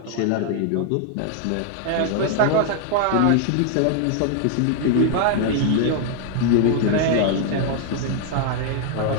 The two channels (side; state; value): both; different; correlation 0.00